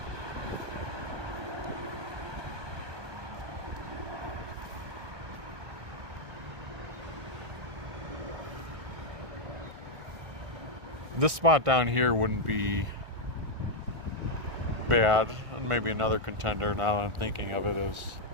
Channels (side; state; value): left; late; 1.6 ms